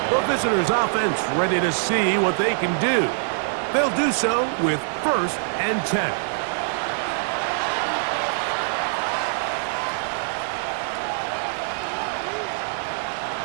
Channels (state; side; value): silent; left; digital silence